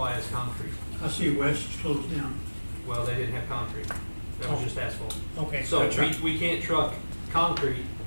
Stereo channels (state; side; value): inverted; both; correlation -1.00